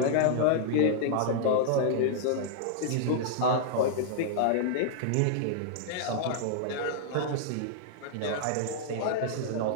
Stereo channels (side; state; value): both; different; correlation -0.01